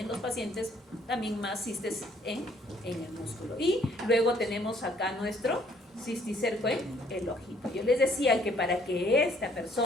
los pacientes también más cistes en el músculo. Y luego tenemos acá nuestro cisticerco en el ojito. Yo les decía que para que esta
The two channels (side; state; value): both; normal; correlation 0.63